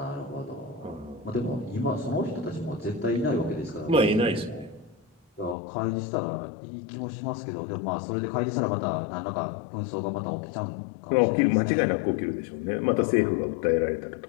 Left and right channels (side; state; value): right; drops out; at 5.6 s